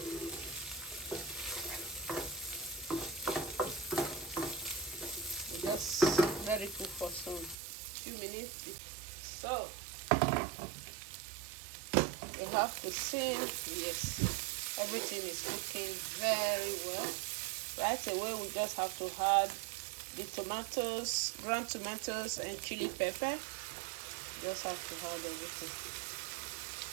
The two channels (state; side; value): drops out; left; at 7.6 s